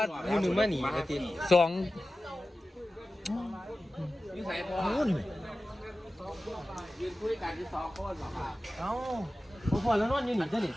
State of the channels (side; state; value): both; normal; correlation 0.95